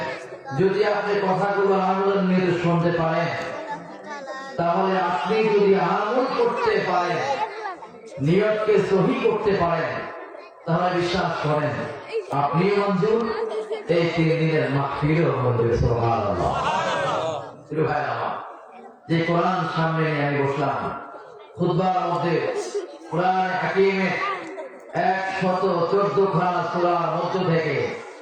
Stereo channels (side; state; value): both; identical; correlation 1.00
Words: যদি আপনি কথাগুলো আমাদের নিয়ে শুনতে পারেন, তাহলে আপনি যদি আমল করতে পারেন, নিয়তকে সহি করতে পারেন, তাহলে বিশ্বাস করেন আপনি মঞ্জুর, এই 3 দিনের মাহফিলও মঞ্জুর। সুবহানাল্লাহ। ভাই আমার, যে কোরআন সামনে নিয়ে আমি বসলাম, খুতবার মধ্যে কোরআন হাকিমের 114 খানা সূরার মধ্য থেকে